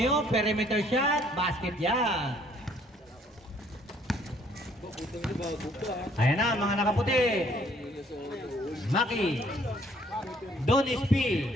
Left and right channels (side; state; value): both; normal; correlation 0.62